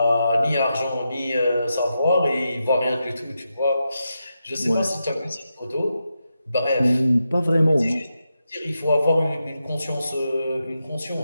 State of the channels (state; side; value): inverted; both; correlation -0.87